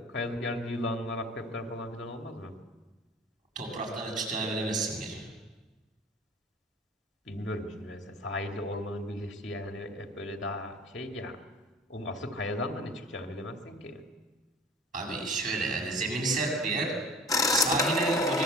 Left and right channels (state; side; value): normal; both; correlation 0.43